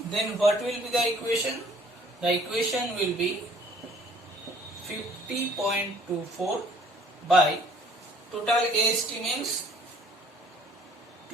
then what will be the equation? The equation will be 50.24 by total AST means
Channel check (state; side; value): normal; both; correlation 0.57